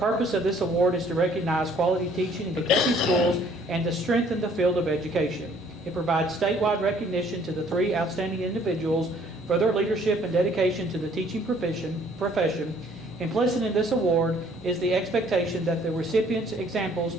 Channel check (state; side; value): normal; both; correlation 0.59